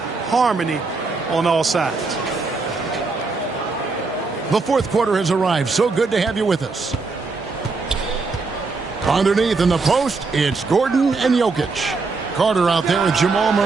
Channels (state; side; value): quieter; left; 4.1 dB